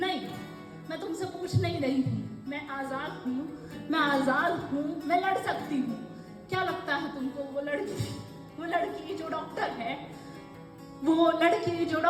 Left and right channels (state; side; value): identical; both; correlation 1.00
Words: मैं तुमसे पूछ नहीं रही हूँ। मैं आजाद हूँ, मैं आजाद हूँ, मैं लड़ सकती हूँ। क्या लगता है तुमको वो लड़की जो डॉक्टर है, वो लड़की जो